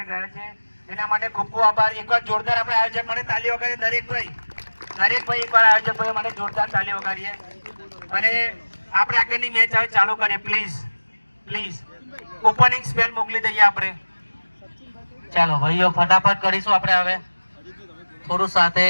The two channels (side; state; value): both; inverted; correlation -1.00